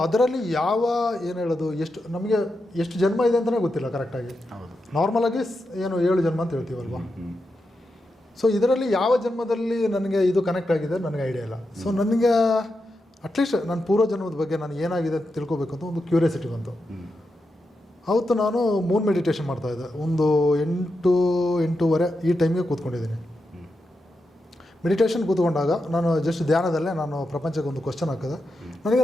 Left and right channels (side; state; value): both; normal; correlation 0.87